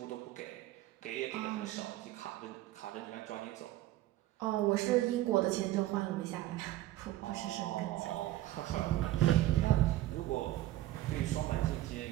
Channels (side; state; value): left; quieter; 15.4 dB